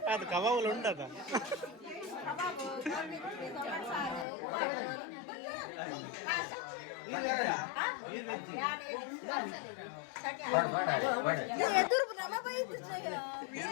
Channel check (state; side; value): drops out; right; at 4.2 s